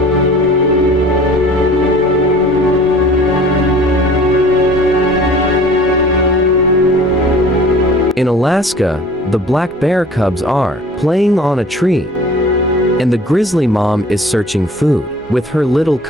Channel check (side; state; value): both; normal; correlation 0.47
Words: In Alaska, the black bear cubs are playing on a tree, and the grizzly mom is searching food with her little